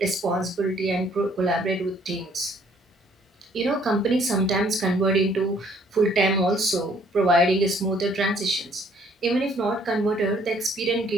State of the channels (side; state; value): both; normal; correlation 0.62